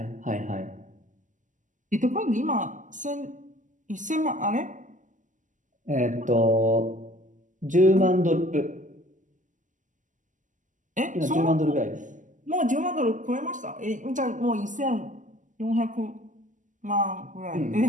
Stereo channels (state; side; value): late; left; 0.37 ms